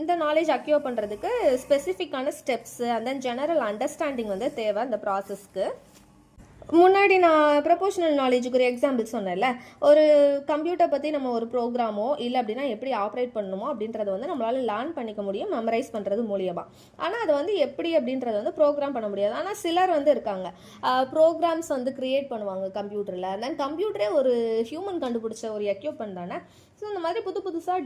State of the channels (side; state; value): both; identical; correlation 1.00